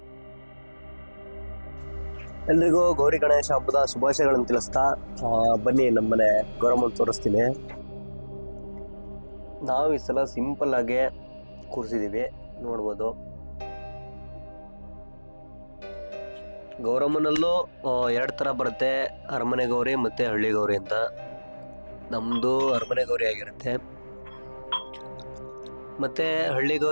ಎಲ್ರಿಗೂ ಗೌರಿ ಗಣೇಶ ಹಬ್ಬದ ಶುಭಾಶಯಗಳನ್ನು ತಿಳಿಸ್ತಾ ಬನ್ನಿ ನಮ್ಮನೆ ಗೌರಮ್ಮನ ತೋರಿಸ್ತೀನಿ. ನಾವು ಈ ಸಲ ಸಿಂಪಲ್ ಆಗಿ ಕೂರಿಸಿದೀವಿ, ನೋಡ್ಬೋದು. ಗೌರಮ್ಮನಲ್ಲೂ ಎರಡು ತರ ಬರುತ್ತೆ, ಅರಮನೆ ಗೌರಿ ಮತ್ತೆ ಹಳ್ಳಿ ಗೌರಿ ಅಂತ. ನಮ್ದು ಅರಮನೆ ಗೌರಿ ಆಗಿರುತ್ತೆ. ಮತ್ತೆ ಹಳ್ಳಿ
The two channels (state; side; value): inverted; both; correlation -1.00